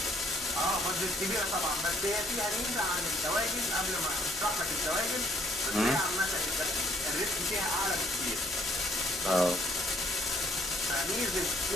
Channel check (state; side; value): noise; left; hum, 23 dB below the sound